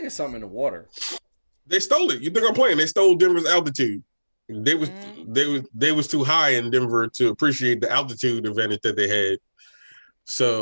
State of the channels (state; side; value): inverted; both; correlation -1.00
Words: it's something in the water. They stole it. You think I'm playing? They stole Denver's altitude. They was too high in Denver to appreciate the altitude advantage that they had.